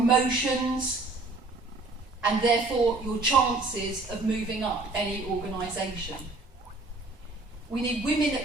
and therefore your chances of moving up any organisation. We need women at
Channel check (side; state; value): left; quieter; 3.4 dB